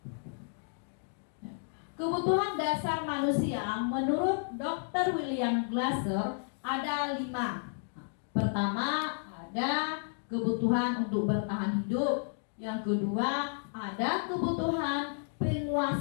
Kebutuhan dasar manusia menurut Dr. William Glasser ada 5. Pertama, ada kebutuhan untuk bertahan hidup. Yang kedua, ada kebutuhan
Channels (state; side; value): silent; right; digital silence